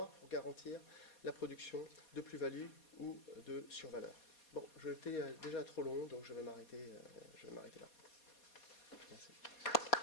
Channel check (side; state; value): right; late; 4.2 ms